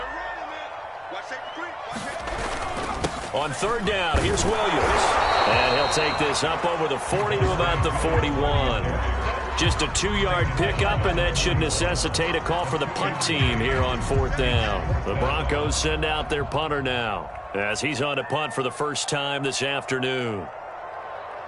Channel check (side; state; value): both; identical; correlation 1.00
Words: On 3rd down, here's Williams. And he'll take this up over the 40 to about the 41. Just a 2-yard pickup, and that should necessitate a call for the punt team here on 4th down. The Broncos send out their punter now as he's on to punt for the first time this afternoon.